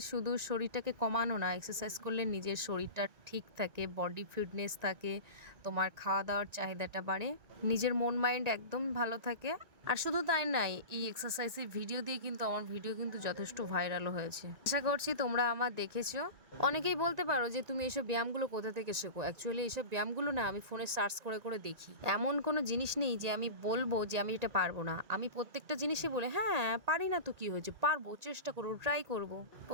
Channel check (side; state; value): left; late; 1.9 ms